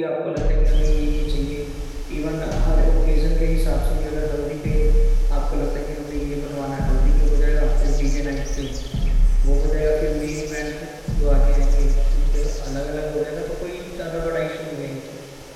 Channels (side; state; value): both; identical; correlation 1.00